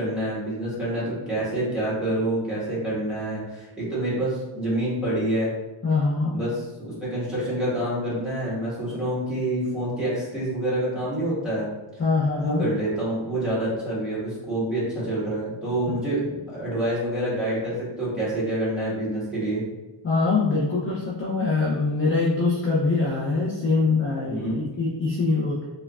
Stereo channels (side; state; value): both; normal; correlation 0.32